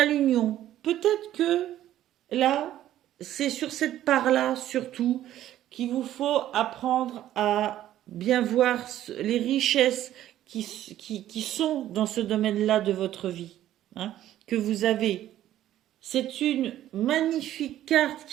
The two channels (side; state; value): left; quieter; 12.7 dB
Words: l'union. Peut-être que là, c'est sur cette part-là surtout qu'il vous faut apprendre à bien voir les richesses qui sont dans ce domaine-là de votre vie, hein, que vous avez. C'est une magnifique carte